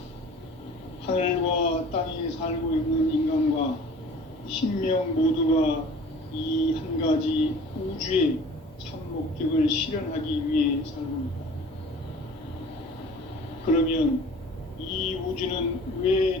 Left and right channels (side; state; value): both; normal; correlation 0.45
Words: 하늘과 땅에 살고 있는 인간과 신명 모두가 이 한 가지 우주의 참 목적을 실현하기 위해 살고 있다. 그러면 이 우주는 왜